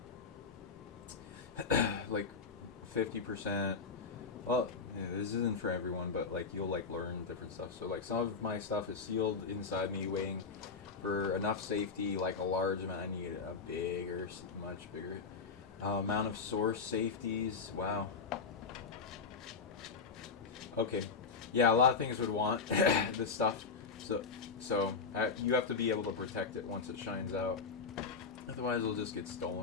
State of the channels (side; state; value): right; quieter; 5.0 dB